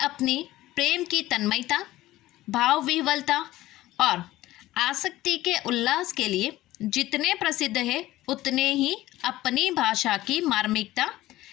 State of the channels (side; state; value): right; quieter; 16.4 dB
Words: प्रेम की तन्मयता, भाव विह्वलता और आसक्ति के उल्लास के लिए जितने प्रसिद्ध है, उतने ही अपनी भाषा की मार्मिकता,